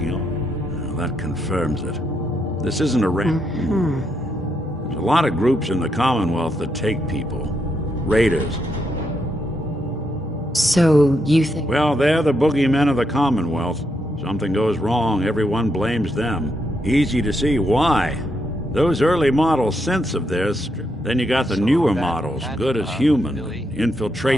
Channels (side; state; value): both; normal; correlation 0.79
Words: on. Well, that confirms it. This isn't a There's a lot of groups in the Commonwealth that take people. Raiders. So, you think... Well, they're the boogeymen of the Commonwealth. Something goes wrong, everyone blames them. Easy to see why. Those early model synths of theirs, then you got the newer models, good as human,